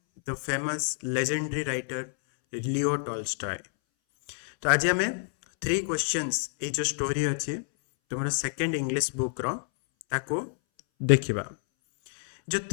the famous legendary writer Leo Tolstoy. तो आज आम three questions ये जो story अच्छी तुम second English book रो देखा जो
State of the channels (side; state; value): right; silent; 59 dB below the other